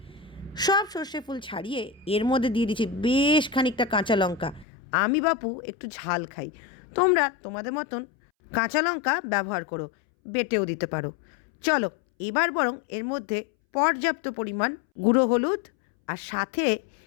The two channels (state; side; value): drops out; right; at 4.7 s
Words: সব সর্ষে ফুল ছাড়িয়ে এর মধ্যে দিয়ে দিচ্ছি বেশ খানিকটা কাঁচা লঙ্কা। আমি বাপু একটু ঝাল খাই, তোমরা তোমাদের মতন কাঁচা লঙ্কা ব্যবহার করো, বেটেও দিতে পারো। চলো এবার বরং এর মধ্যে পর্যাপ্ত পরিমাণ গুঁড়ো হলুদ আর সাথে